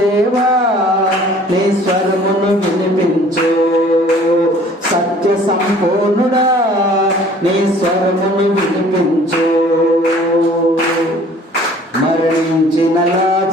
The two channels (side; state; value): both; normal; correlation 0.52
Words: నీ స్వరమును వినిపించు,